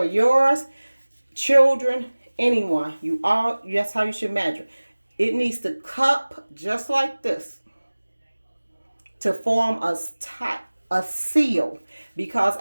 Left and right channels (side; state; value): both; inverted; correlation -1.00